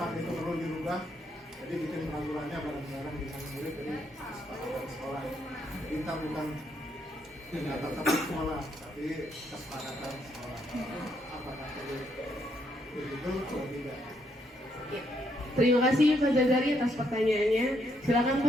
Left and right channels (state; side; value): normal; both; correlation 0.74